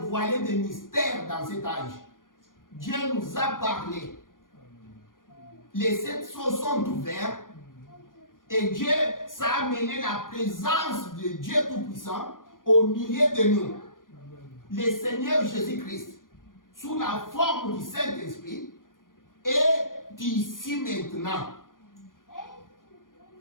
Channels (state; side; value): late; right; 0.90 ms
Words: des mystères dans cet âge. Dieu nous a parlé. Les 7 sceaux sont ouverts. Et Dieu, ça a amené la présence de Dieu Tout-Puissant au milieu de nous. Le Seigneur Jésus-Christ, sous la forme du Saint-Esprit, est ici maintenant.